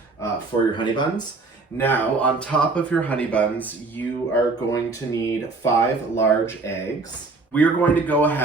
for your honey buns. Now, on top of your honey buns, you are going to need 5 large eggs. We are going to go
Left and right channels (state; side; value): quieter; left; 3.8 dB